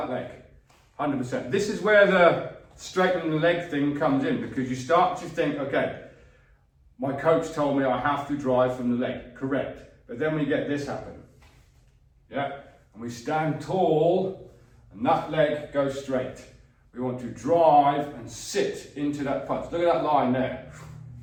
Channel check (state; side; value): identical; both; correlation 1.00